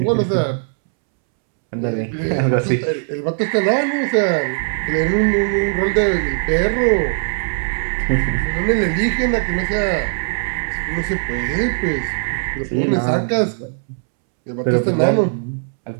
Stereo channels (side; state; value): left; silent; 66 dB below the other